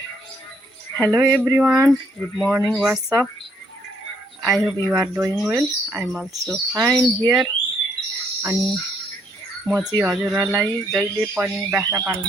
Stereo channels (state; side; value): normal; both; correlation 0.70